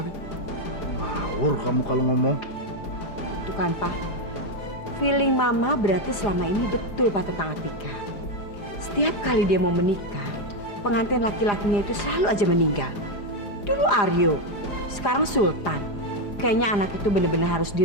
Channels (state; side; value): late; right; 4.9 ms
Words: Ngawur kamu kalau ngomong. Tuh kan, Pak. Feeling Mama berarti selama ini betul, Pak, tentang Atika. Setiap kali dia mau menikah, pengantin laki-lakinya itu selalu aja meninggal. Dulu Aryo, sekarang Sultan. Kayaknya anak itu bener-bener harus